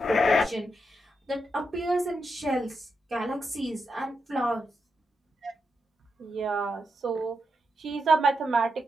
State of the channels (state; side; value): normal; both; correlation 0.84